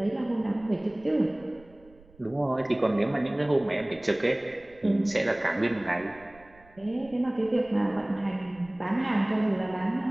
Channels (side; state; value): right; noise; rumble, 26 dB below the sound